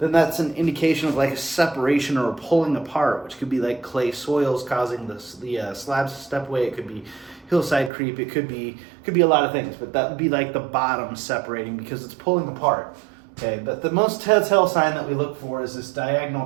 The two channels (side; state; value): left; drops out; at 7.9 s